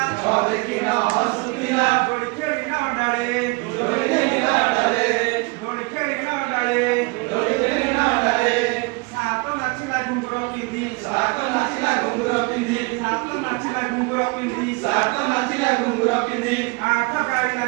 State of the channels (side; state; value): left; quieter; 28.8 dB